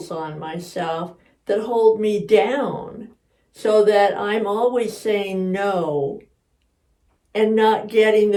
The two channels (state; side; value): identical; both; correlation 1.00